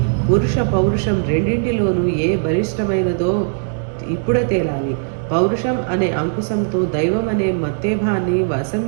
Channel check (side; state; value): left; silent; digital silence